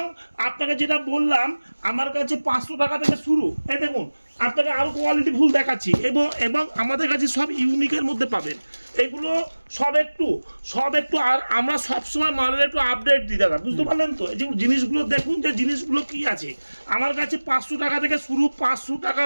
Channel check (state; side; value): inverted; both; correlation -1.00